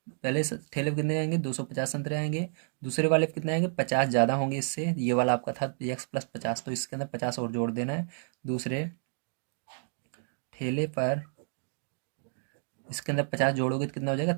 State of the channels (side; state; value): left; silent; digital silence